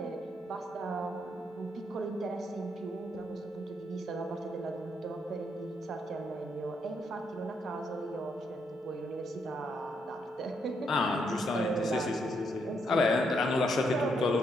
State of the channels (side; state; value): both; normal; correlation 0.77